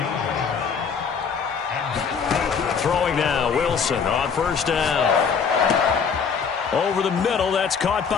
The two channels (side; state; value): right; quieter; 6.2 dB